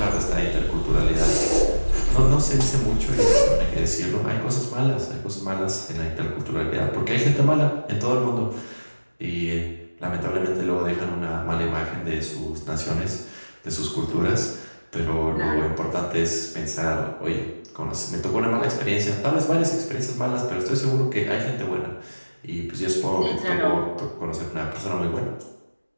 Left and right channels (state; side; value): inverted; both; correlation -1.00